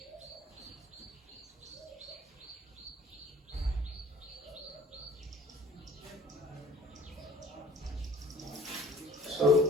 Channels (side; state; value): both; normal; correlation 0.52